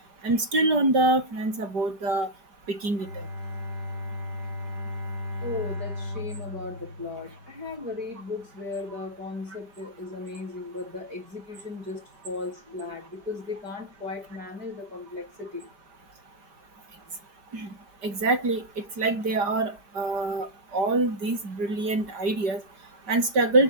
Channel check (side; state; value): left; late; 5.3 ms